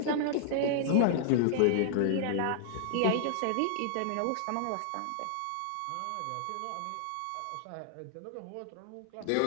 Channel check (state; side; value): different; both; correlation -0.01